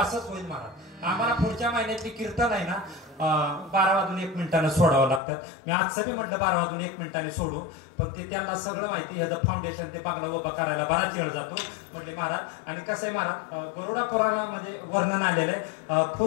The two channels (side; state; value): right; drops out; at 5.2 s